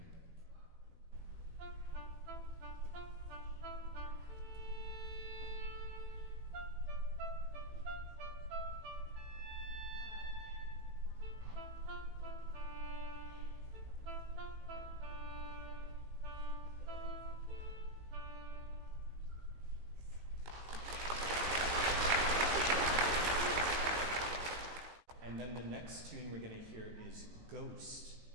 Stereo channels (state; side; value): late; left; 18 ms